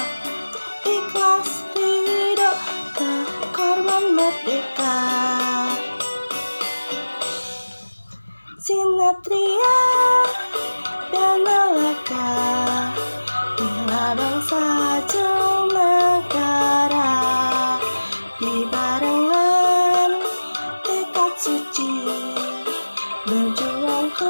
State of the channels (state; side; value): inverted; both; correlation -1.00